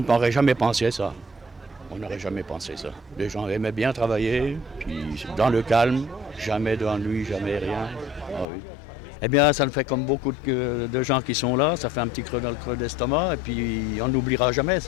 jamais pensé ça. On n'aurait jamais pensé ça. Les gens aimaient bien travailler, puis dans le calme, jamais d'ennui, jamais rien. Ah oui. Eh bien, ça le fait comme beaucoup de gens qui sont là, ça fait un petit creux dans le creux d'estomac, et puis on n'oubliera jamais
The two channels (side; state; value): right; drops out; at 8.5 s